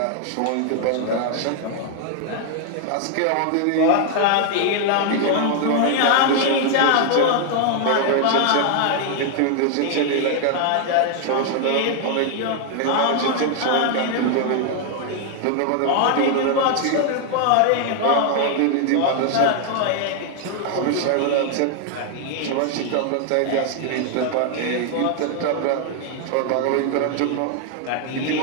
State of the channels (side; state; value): both; different; correlation 0.00